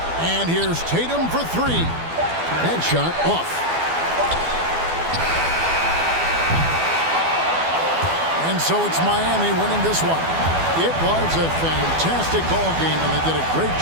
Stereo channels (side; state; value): left; late; 12 ms